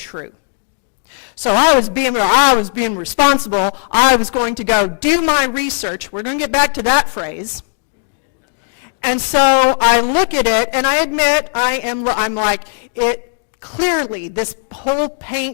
So I was being responsible. I was going to go do my research. We're going to get back to that phrase. And so I look at it, and I admit I'm like, clearly this whole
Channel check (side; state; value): right; silent; digital silence